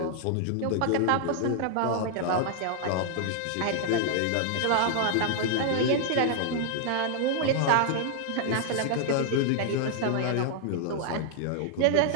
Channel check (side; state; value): both; different; correlation 0.00